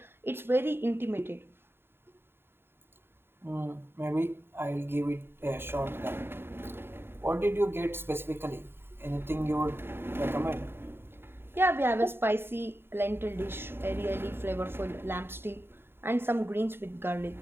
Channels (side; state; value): left; late; 0.11 ms